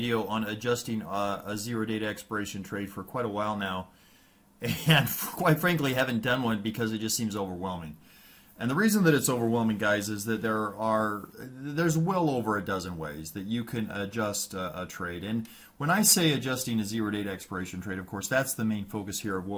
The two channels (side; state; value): both; identical; correlation 1.00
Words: on adjusting a zero data expiration trade for quite a while now, and quite frankly haven't done one because it just seems overwhelming. And the reason that it's overwhelming, guys, is that there's well over a dozen ways that you can adjust a trade. And when I say adjusting a zero data expiration trade, of course, that's the main focus here of